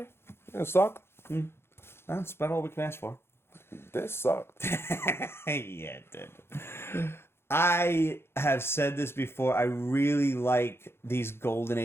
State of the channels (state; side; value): late; right; 0.12 ms